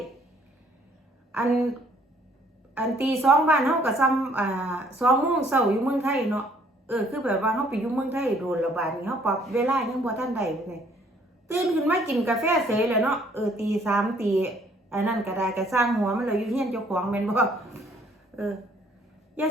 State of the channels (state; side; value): normal; both; correlation 0.62